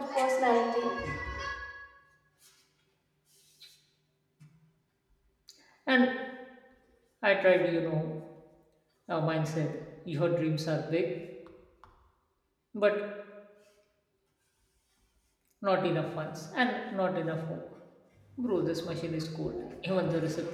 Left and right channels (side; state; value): both; identical; correlation 1.00